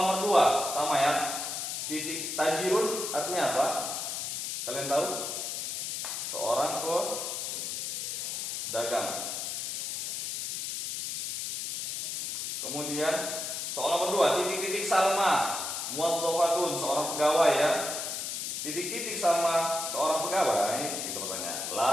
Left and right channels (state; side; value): noise; left; hiss, 3 dB below the sound